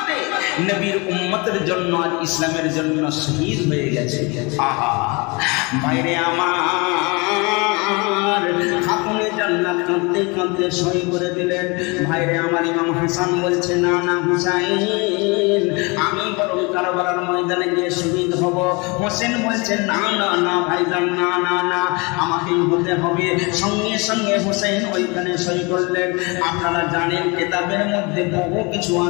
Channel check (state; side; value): quieter; right; 28.3 dB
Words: নবীর উম্মতের জন্য আর ইসলামের জন্য শহীদ হয়ে গেছে। আহা ভাইরে আমার, খাতুনে জান্নাত কাঁদতে কাঁদতে সই করে দিলেন। ভাইরে আমার, ইমাম হাসান বলছে না না হুসাইন, আমি বরং কারবালার ময়দানে গিয়ে শহীদ হব। হোসেন বলছে না না না ভাইজান, না না না, আমাকেই হতে হবে। সঙ্গে সঙ্গে হোসেন ওইখানে সই করলেন। আপনারা জানেন কেতাবের মধ্যে বহু কিছু